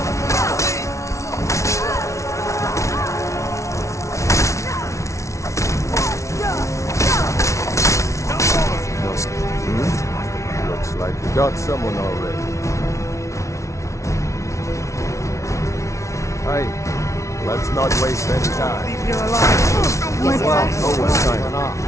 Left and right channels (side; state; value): right; late; 0.14 ms